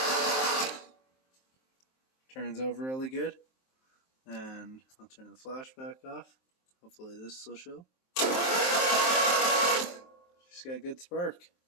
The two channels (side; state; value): right; late; 23 ms